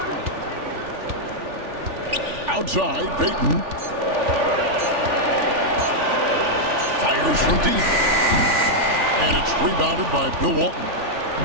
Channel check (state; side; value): late; left; 3.4 ms